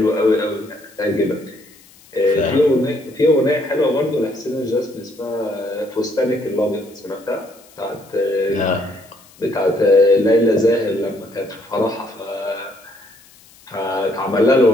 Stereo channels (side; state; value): left; noise; hiss, 26 dB below the sound